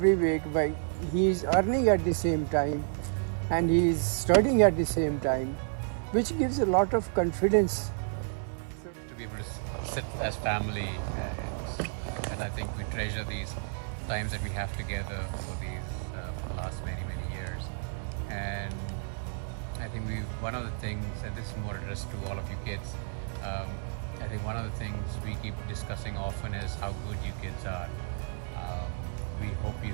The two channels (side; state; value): left; silent; digital silence